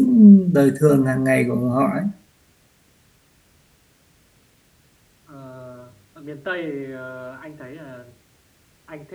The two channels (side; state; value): both; identical; correlation 1.00